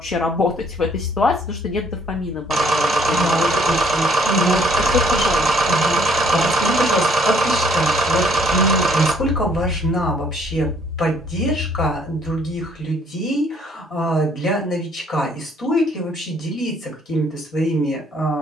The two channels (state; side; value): normal; both; correlation 0.63